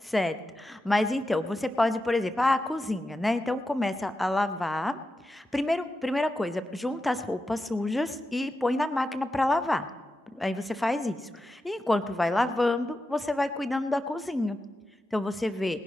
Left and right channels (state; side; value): normal; both; correlation 0.89